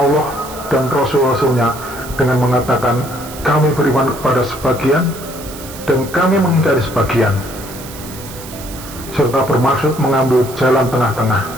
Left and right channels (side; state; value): right; noise; hiss, 15 dB below the sound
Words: dan Rasul-Rasulnya dengan mengatakan kami beriman kepada sebagian dan kami mengingkari sebagian, serta bermaksud mengambil jalan tengah-tengah